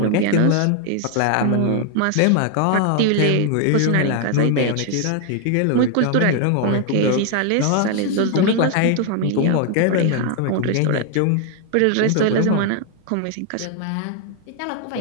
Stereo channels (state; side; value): different; both; correlation 0.01